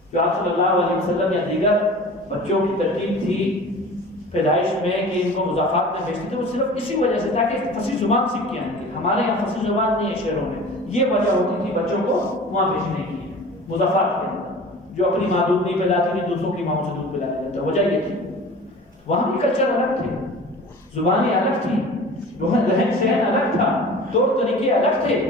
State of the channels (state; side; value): normal; both; correlation 0.40